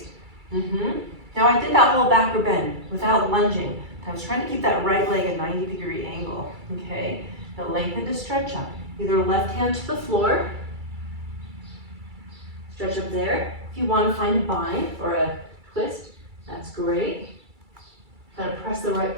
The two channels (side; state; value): left; late; 2.3 ms